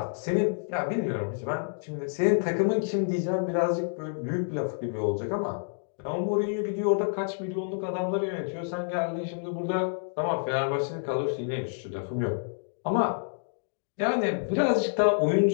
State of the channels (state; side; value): silent; right; digital silence